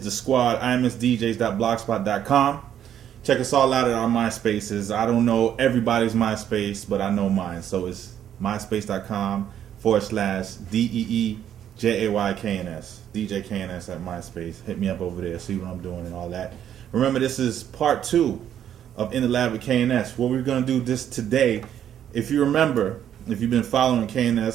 squad, imsdjs.blogspot.com. Check us all out at our MySpaces. I don't know everybody's MySpace, but I know mine. So it's myspace.com/DEEJAYKNS. DJ KNS at MySpace. Hit me up over there, see what I'm doing and all that. Remember, this is part 2 of In the Lab with KNS. What we're going to do this today, if you remember, if you've been following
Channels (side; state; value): left; quieter; 10.0 dB